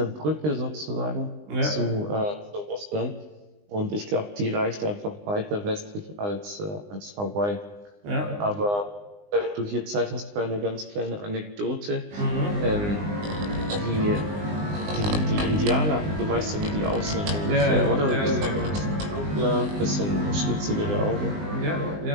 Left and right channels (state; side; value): late; left; 20 ms